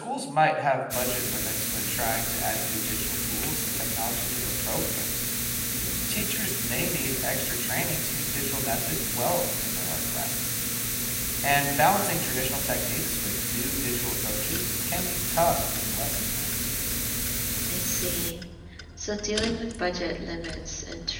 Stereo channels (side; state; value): both; identical; correlation 1.00